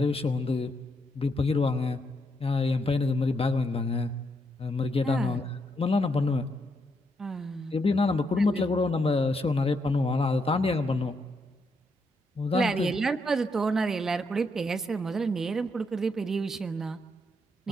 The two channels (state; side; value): normal; both; correlation 0.78